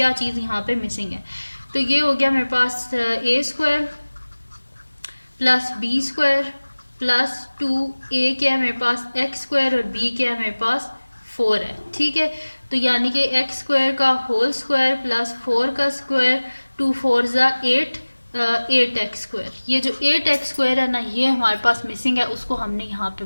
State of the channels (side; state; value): both; inverted; correlation -1.00